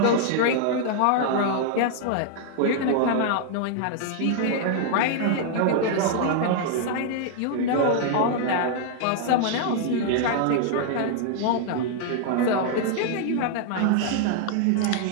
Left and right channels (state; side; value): different; both; correlation 0.00